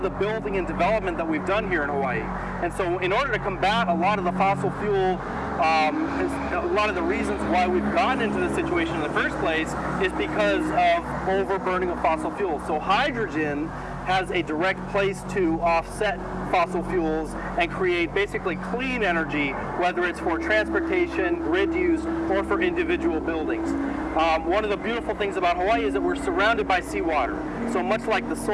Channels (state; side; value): identical; both; correlation 1.00